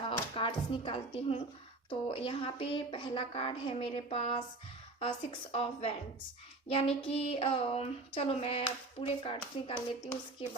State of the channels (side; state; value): left; quieter; 3.1 dB